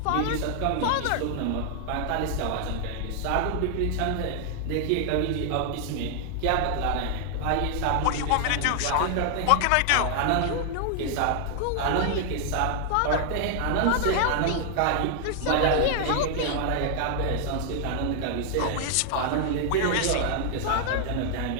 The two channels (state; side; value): different; both; correlation 0.00